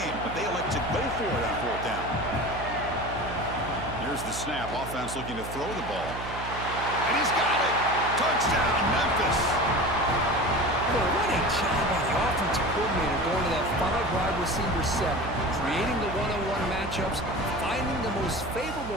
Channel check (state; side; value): noise; right; hum, 9 dB below the sound